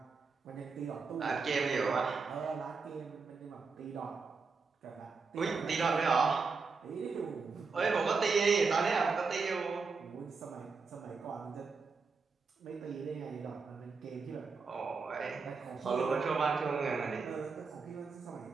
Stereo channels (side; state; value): left; quieter; 4.7 dB